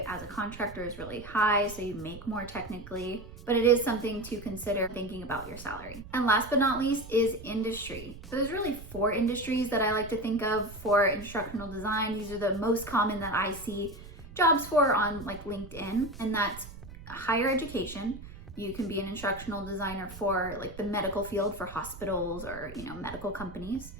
as a contractor is really high, so you make more technically, but it is something to consider thinking about your salary. And last but not least is industry. So there's really 4 industries that I like to think of for instructional design. These are the most common that I see jobs for on like LinkedIn, and that's higher education. You can be an instructional designer for like the medical field for hospitals or medical companies.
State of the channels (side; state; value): right; noise; rumble, 15 dB below the sound